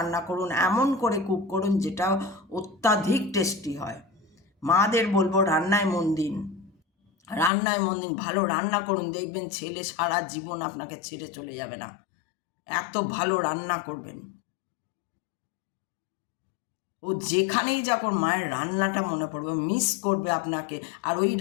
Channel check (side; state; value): right; drops out; at 7.5 s